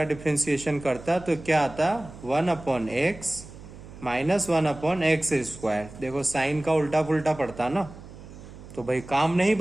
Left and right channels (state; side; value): noise; right; hum, 16 dB below the sound